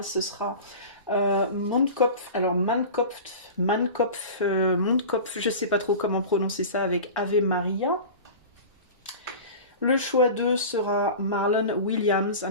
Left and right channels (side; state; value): both; inverted; correlation -0.34